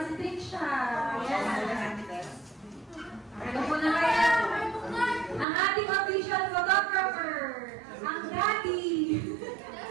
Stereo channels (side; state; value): left; drops out; at 5.5 s